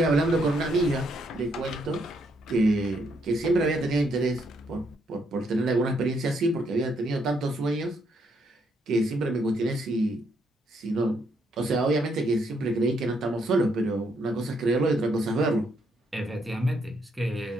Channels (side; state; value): both; normal; correlation 0.74